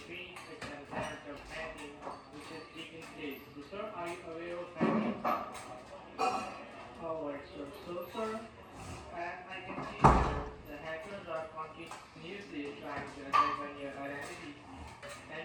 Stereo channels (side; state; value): both; identical; correlation 1.00